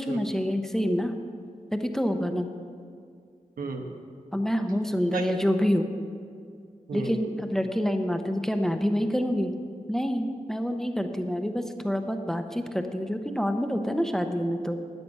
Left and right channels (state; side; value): normal; both; correlation 0.94